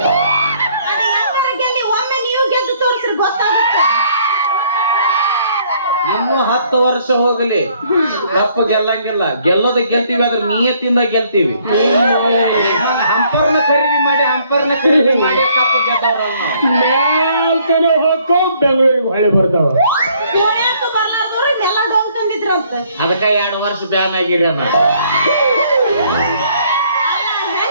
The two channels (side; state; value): both; inverted; correlation -0.64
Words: ಅದು ಯಾವಾಗ ಗೆಲ್ಲಿ ಒಮ್ಮೆ ನೀವು ಗೆದ್ದು ತೋರಿಸ್ರಿ ಗೊತ್ತಾಗುತ್ತೆ ಇನ್ನು 10 ವರ್ಷ ಹೋಗಲಿ ಕಪ್ಪ ಗೆಲ್ಲಂಗಿಲ್ಲ ಗೆಲ್ತೀವಿ ಆದ್ರೆ ನಿಯತ್ತಿಂದ ಗೆಲ್ತೀವಿ ಹಂಪರ್ನ ಖರೀದಿ ಮಾಡಿ ಕಪ್ಪ ಗೆದ್ದವ್ರಲ್ಲ ಮ್ಯಾಲ್ತನ ಹೋಗೋ ಬೆಂಗಳೂರಿಗೆ ಹೊಳೆ ಬರ್ತಾವ ಪುಣ್ಯಕ್ಕೆ ಬರ್ಲಾರ್ದವ್ರು ನೆಲ ಡೋಂಗ್ ತಂದಿದ್ರಂತ ಅದಕ್ಕ 2 ವರ್ಷ ಬ್ಯಾನ್ ಆಗಿರಿ ಅನ್ನ